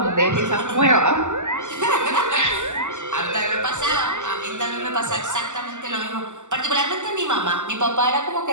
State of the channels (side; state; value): left; late; 0.84 ms